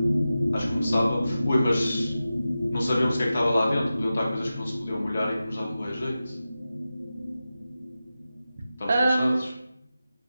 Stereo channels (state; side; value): inverted; both; correlation -0.93